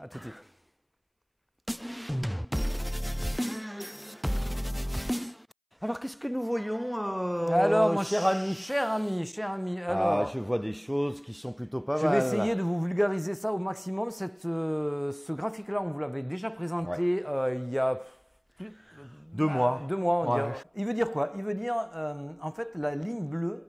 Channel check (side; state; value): both; identical; correlation 1.00